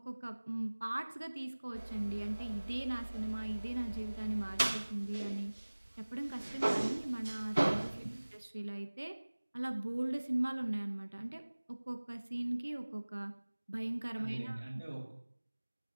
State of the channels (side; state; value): both; inverted; correlation -1.00